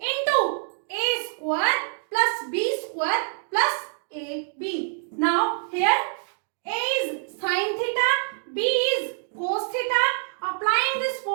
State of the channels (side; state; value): left; silent; 60 dB below the other